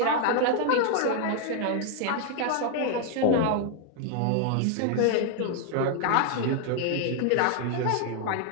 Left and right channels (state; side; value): different; both; correlation 0.00